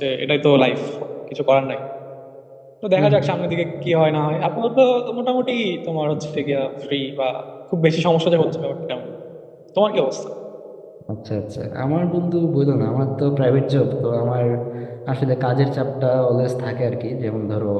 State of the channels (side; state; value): both; identical; correlation 1.00